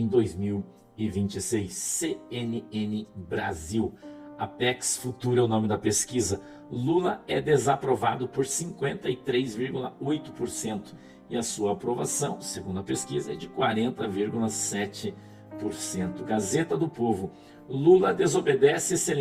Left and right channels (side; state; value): both; identical; correlation 1.00